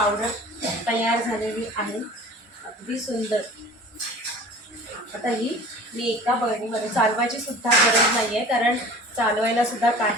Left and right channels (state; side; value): normal; both; correlation 0.42